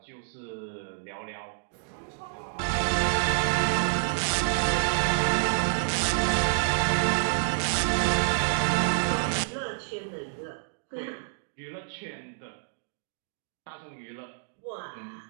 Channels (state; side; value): silent; left; digital silence